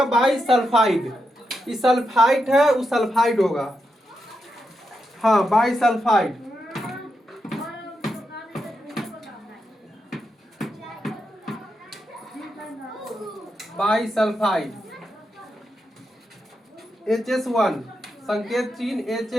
बाई सल्फाइड। ये सल्फाइड है, वो सल्फाइड होगा। हाँ, by sulphide. By sulphide HS1, संकेत चिन्ह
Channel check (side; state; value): both; normal; correlation 0.86